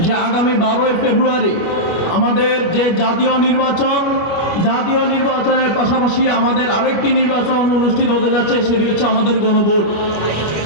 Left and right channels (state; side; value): late; right; 24 ms